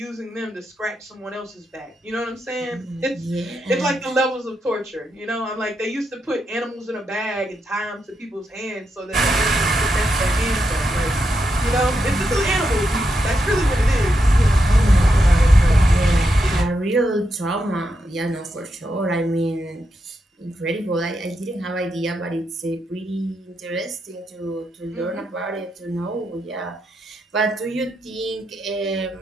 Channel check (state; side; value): normal; both; correlation 0.84